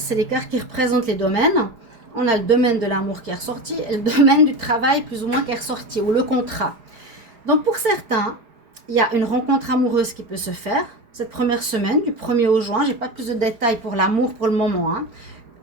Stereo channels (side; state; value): left; late; 4.8 ms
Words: que c'est les cartes qui représentent les domaines. On a le domaine de l'amour qui est ressorti et le domaine du travail plus ou moins qui est ressorti, ou le contrat. Donc pour certains, il y a une rencontre amoureuse qui peut se faire cette première semaine, du 1er au juin. Je n'ai pas plus de détails pour l'amour pour le moment. Hein.